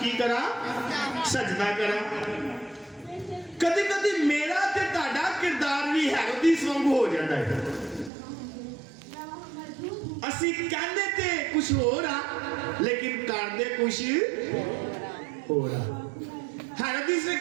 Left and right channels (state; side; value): drops out; left; at 8.1 s